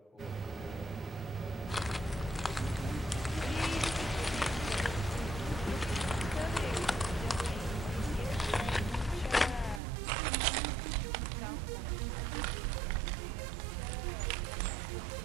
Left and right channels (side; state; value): left; drops out; at 9.8 s